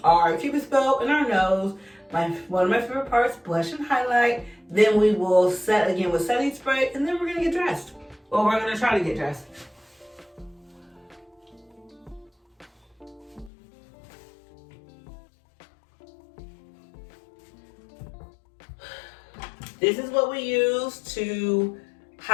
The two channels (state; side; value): drops out; right; at 13.5 s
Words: our Cupid's bow in our nose. One of my favorite parts, blush and highlight. Then we will set again with setting spray, and then we're gonna get dressed. Well, we're gonna try to get dressed. This is what we use to